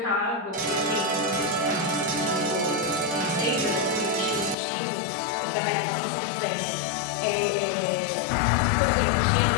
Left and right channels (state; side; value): drops out; right; at 4.5 s